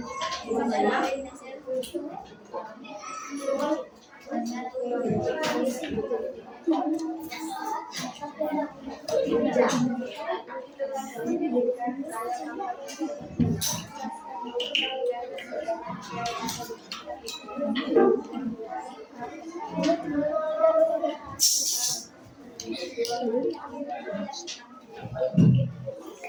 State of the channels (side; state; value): both; identical; correlation 1.00